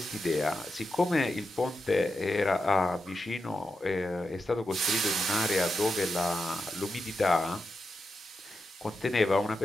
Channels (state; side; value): normal; both; correlation 0.88